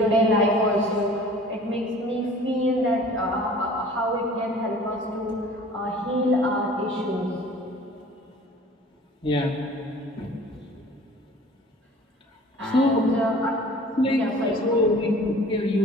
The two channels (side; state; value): both; normal; correlation 0.47